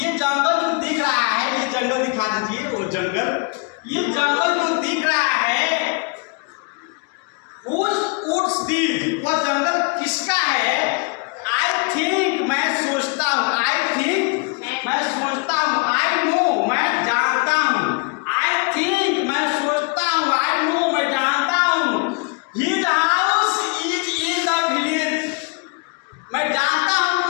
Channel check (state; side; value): quieter; right; 32.2 dB